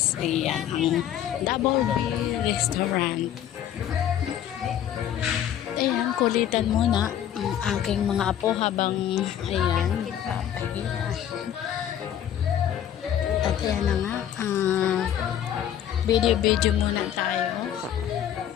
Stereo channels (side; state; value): right; quieter; 10.4 dB